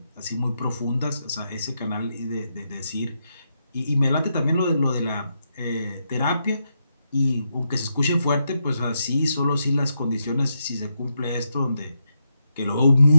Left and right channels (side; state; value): both; inverted; correlation -0.83